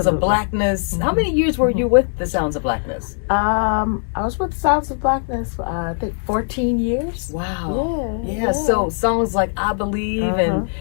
of Blackness. How many years were you with the Sounds of Blackness? I was with Sounds of Blackness for I think 14 years. Wow. Yeah. So songs like I Believe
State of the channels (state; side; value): silent; right; 66 dB below the other